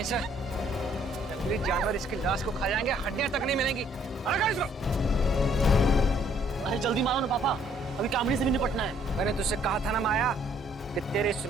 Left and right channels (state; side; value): normal; both; correlation 0.64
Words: इसे। जंगली जानवर इसकी लाश को खा जाएंगे, हड्डियां तक नहीं मिलेंगी। अरे कर इसको। अरे जल्दी मारो ना पापा, अभी कामड़ी से भी निपटना है। मैंने तुझसे कहा था ना माया कि तेरे इस